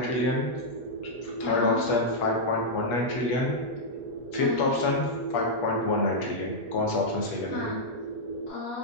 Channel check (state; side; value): late; right; 8.4 ms